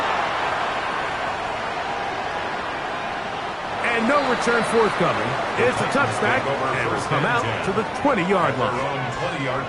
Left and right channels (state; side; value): identical; both; correlation 1.00